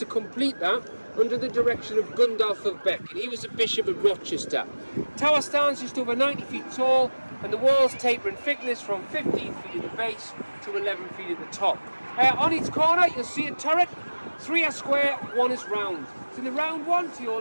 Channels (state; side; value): inverted; both; correlation -1.00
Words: complete that under the direction of Gundulf of Beck, and he was a bishop of Rochester. Tower stands just over 90 feet tall, and the walls taper in thickness from 15 feet at the base to 11 feet at the top. On each corner you'll see a turret, 3 are square, 1 is round. To the round one to your